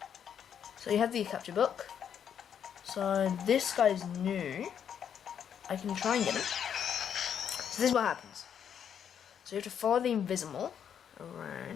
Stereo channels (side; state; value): right; quieter; 8.4 dB